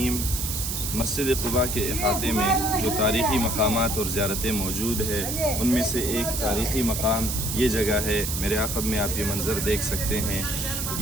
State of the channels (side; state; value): right; noise; hiss, 3 dB below the sound